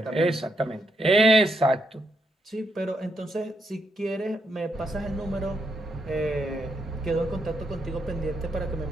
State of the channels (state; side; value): normal; both; correlation 0.78